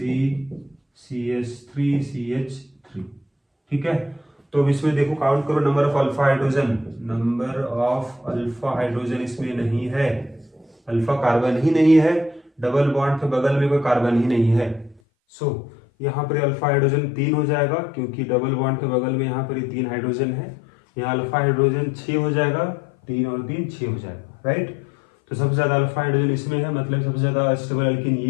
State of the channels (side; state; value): right; drops out; at 15.0 s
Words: CH3, ठीक है। तो अब इसमें देखो काउंट करो नंबर ऑफ अल्फा हाइड्रोजन इसमें नहीं है, अल्फा कार्बन ही नहीं है, डबल बॉन्ड के बगल में कोई कार्बन ही नहीं है। सो यहाँ पर अल्फा हाइड्रोजन 3 हो जाएगा, क्योंकि डबल बॉन्ड के बगल में यहाँ पर 3 हाइड्रोजन है, यहाँ अल्फा हाइड्रोजन 6 हो जाएगा, 3 और 3 6 हो जाएगा, राइट। तो सबसे ज्यादा अल्फा हाइड्रोजन इसमें है, मतलब सबसे ज्यादा स्टेबल एल्कीन